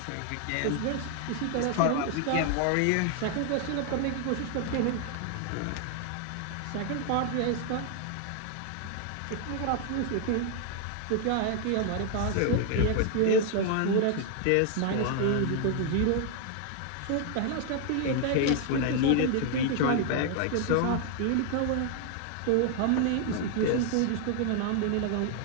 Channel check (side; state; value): both; different; correlation 0.00